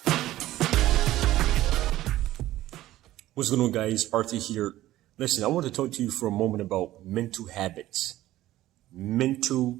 What's going on, guys? Arthur here. Listen, I want to talk to you for a moment about mental habits.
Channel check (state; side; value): quieter; left; 15.1 dB